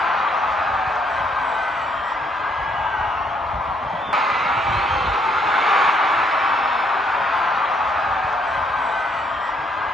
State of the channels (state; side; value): normal; both; correlation 0.70